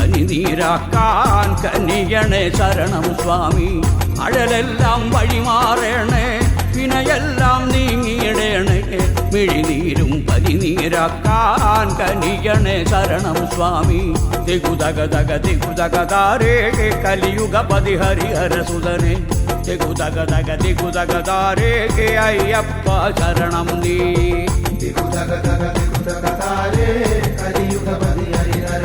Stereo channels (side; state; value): both; identical; correlation 1.00